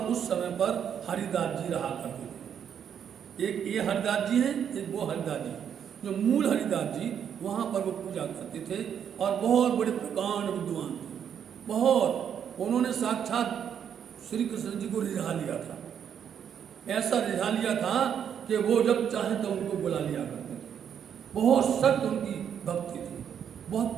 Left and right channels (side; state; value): left; quieter; 8.4 dB